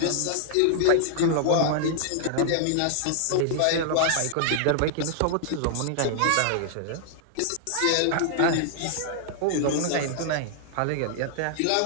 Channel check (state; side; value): different; both; correlation -0.01